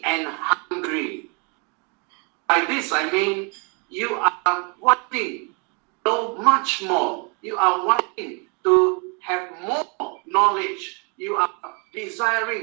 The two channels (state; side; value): quieter; left; 34.4 dB